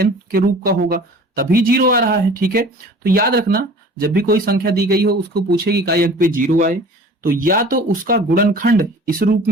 के रूप का होगा, तभी 0 आ रहा है, ठीक है। तो याद रखना, जब भी कोई संख्या दी गई हो उसको पूछे कि इकाई अंक पे 0 आए, तो या तो उसका गुणनखंड इस रूप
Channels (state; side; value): normal; both; correlation 0.44